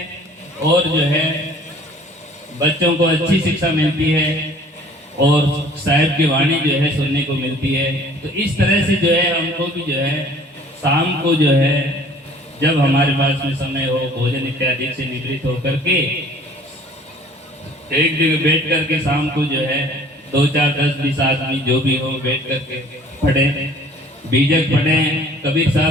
और जो है बच्चों को अच्छी शिक्षा मिलती है और साहिब की वाणी जो है सुनने को मिलती है। तो इस तरह से जो है हमको भी जो है शाम को जो है जब हमारे पास में समय हो, भोजन इत्यादि से निवृत्त होकर के एक जगह बैठ करके शाम को जो है 2, 4, 10, 20 आदमी जो भी हो बैठ करके पढ़े, बीजक पढ़े, कबीर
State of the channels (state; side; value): normal; both; correlation 0.52